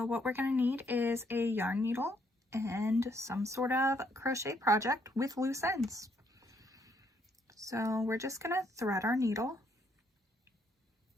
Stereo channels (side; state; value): both; normal; correlation 0.71